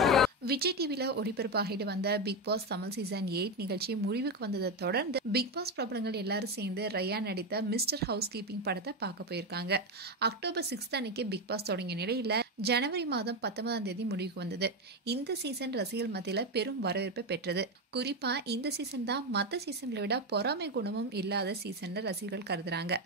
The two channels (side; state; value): both; normal; correlation 0.12